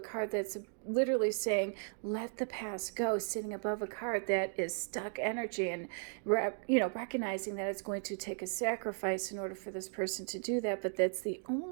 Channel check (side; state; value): left; silent; 54 dB below the other